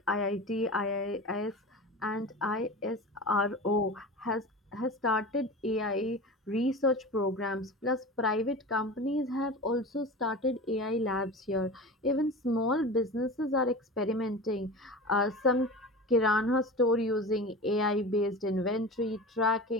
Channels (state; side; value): normal; both; correlation 0.31